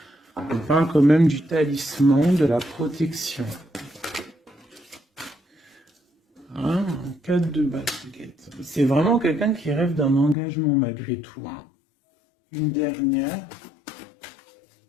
On parle quand même du talisman, de la protection. Hein, 4 de basket. C'est vraiment quelqu'un qui rêve d'un engagement malgré tout. Hein. Une dernière.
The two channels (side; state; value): right; drops out; at 10.4 s